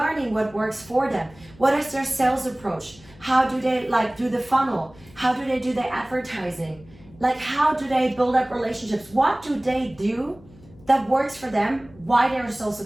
what works for them. What is their sales approach? How do they like do the funnel? How do they do their advertising? Like, how do they build up relationships? What do they do that works for them? Why they're so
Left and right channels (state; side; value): noise; left; hum, 24 dB below the sound